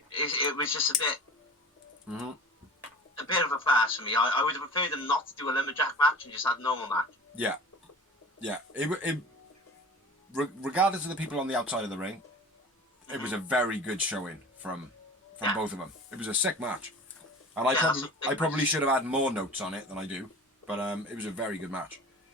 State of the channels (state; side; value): normal; both; correlation 0.39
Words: was just a bit of a farce for me. I would have preferred them not to do a lumberjack match and just have a normal match. Yeah. Yeah. Regardless of the people on the outside of the ring, it was a very good showing from both of them. It was a sick match. And I probably should have had more notes on it than I do, but it was a very good match.